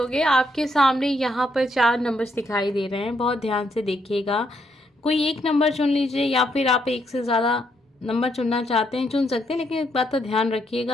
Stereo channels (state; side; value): normal; both; correlation 0.76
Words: आपके सामने यहाँ पर 4 नंबर्स दिखाई दे रहे हैं, बहुत ध्यान से देखिएगा। कोई एक नंबर चुन लीजिए या फिर आप एक से ज़्यादा नंबर चुनना चाहते हैं चुन सकते हैं, लेकिन एक बात का ध्यान